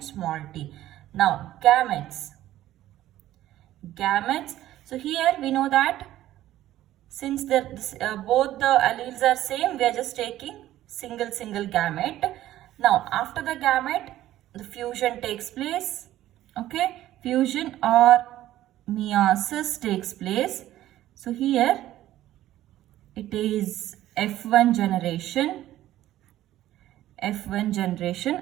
small t. Now gametes. Gametes. So here we know that since both the alleles are same, we are just taking single gamete. Now after the gamete, the fusion takes place. Okay, fusion or meiosis takes place. So here it is F1 generation,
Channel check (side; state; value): left; quieter; 13.9 dB